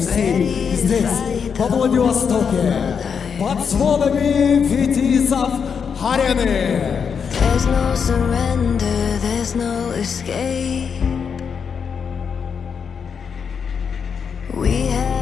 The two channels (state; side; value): quieter; right; 6.6 dB